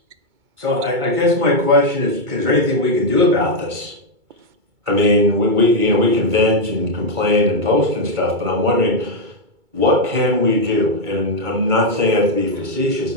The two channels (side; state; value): left; late; 2.2 ms